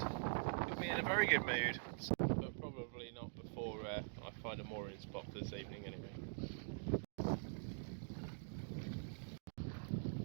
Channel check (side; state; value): left; silent; digital silence